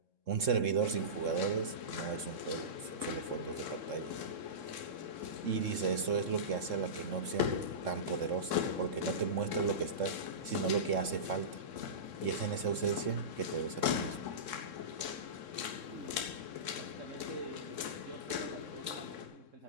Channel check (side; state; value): left; late; 3.7 ms